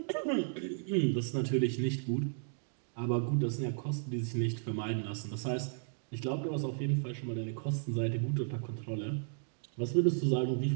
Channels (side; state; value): left; silent; digital silence